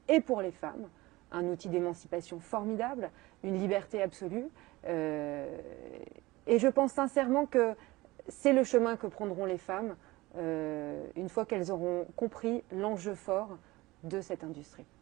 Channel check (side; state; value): left; quieter; 20.3 dB